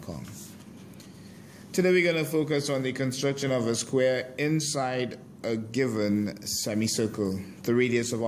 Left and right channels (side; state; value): both; identical; correlation 1.00